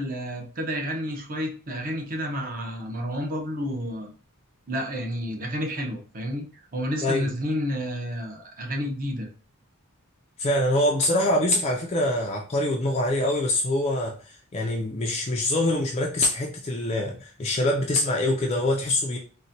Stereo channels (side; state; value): both; normal; correlation 0.41